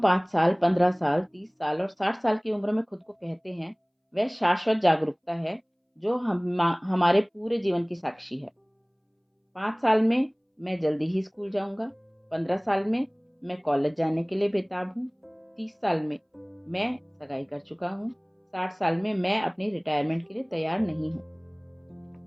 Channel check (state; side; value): identical; both; correlation 1.00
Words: साल, 15 साल, 30 साल और 60 साल की उम्र में खुद को कहते हैं, वह शाश्वत जागरूकता है जो हमारे पूरे जीवन की साक्षी है। 5 साल में मैं जल्दी ही स्कूल जाऊंगा। 15 साल में मैं कॉलेज जाने के लिए बेताब हूँ। 30 साल में मैं सगाई कर चुका हूँ। 60 साल में मैं अपनी रिटायरमेंट के लिए तैयार नहीं